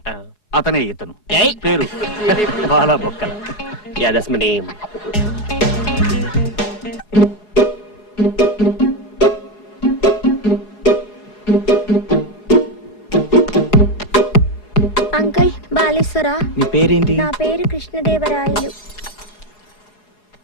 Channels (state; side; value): late; right; 4.8 ms